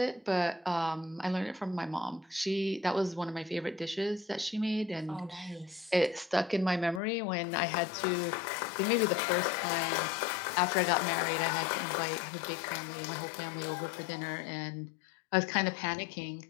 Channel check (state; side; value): drops out; right; at 7.0 s